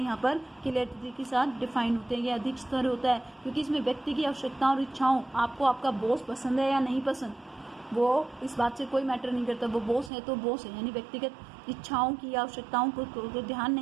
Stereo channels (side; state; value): left; drops out; at 10.1 s